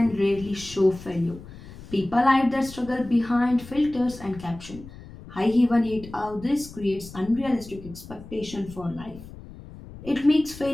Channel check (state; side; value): noise; left; rumble, 16 dB below the sound